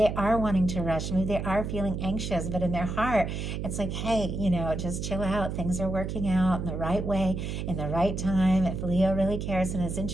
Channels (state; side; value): noise; right; hum, 4 dB below the sound